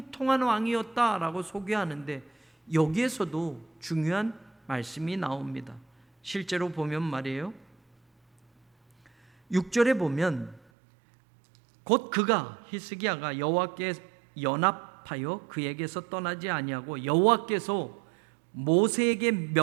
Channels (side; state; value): left; drops out; at 10.6 s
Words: 왕이었다라고 소개하는데, 여기에서도 중요한 말씀이 나옵니다. 실제로 보면 말이에요, 6절에 보면 곧 그가, 히스기야가 여호와께 연합하여 그에게서 떠나지 아니하고 여호와께서 모세에게